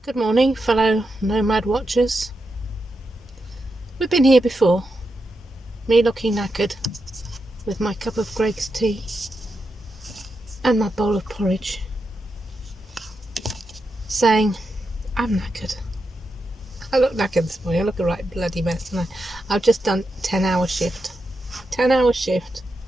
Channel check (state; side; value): normal; both; correlation 0.86